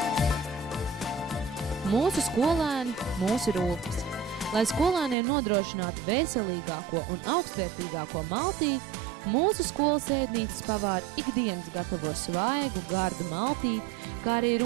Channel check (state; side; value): drops out; left; at 5.2 s